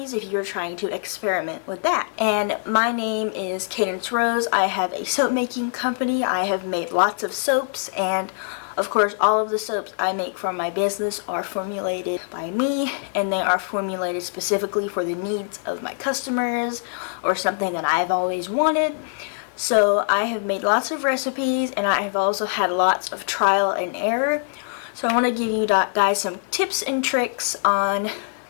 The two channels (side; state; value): right; silent; digital silence